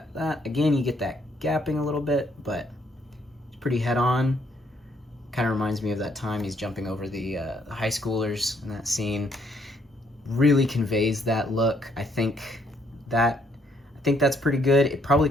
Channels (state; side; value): normal; both; correlation 0.70